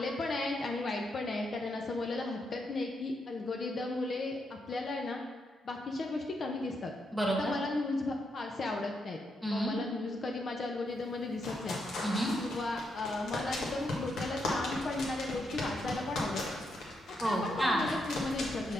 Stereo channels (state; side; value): normal; both; correlation 0.80